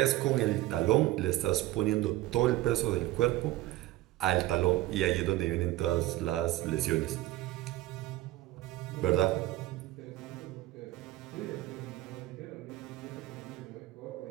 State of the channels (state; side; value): quieter; left; 16.4 dB